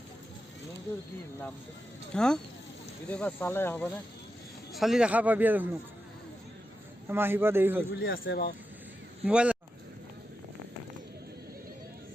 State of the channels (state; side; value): normal; both; correlation 0.89